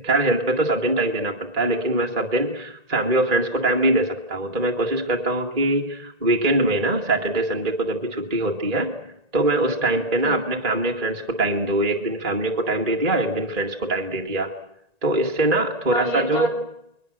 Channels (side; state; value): left; late; 1.8 ms